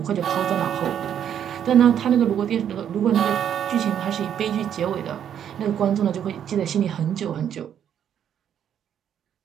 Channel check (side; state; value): left; quieter; 9.3 dB